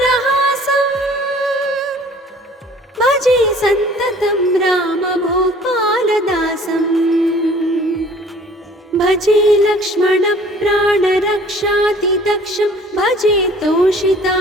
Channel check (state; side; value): normal; both; correlation 0.52